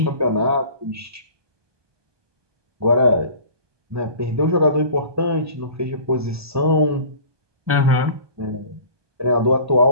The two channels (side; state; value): left; late; 1.2 ms